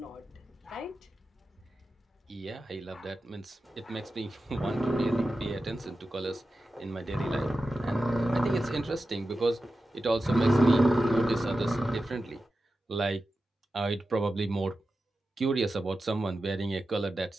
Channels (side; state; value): both; normal; correlation 0.92